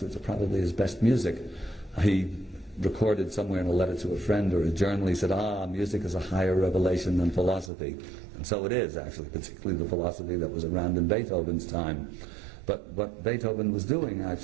which are probably his best music, he recorded somewhere in a letter to a friend or a journal, he said, music is a higher revelation than philosophy. And so it is, actually, particularly the philosophy that was around in Beethoven's time. But what Beethoven was doing,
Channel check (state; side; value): drops out; left; at 7.7 s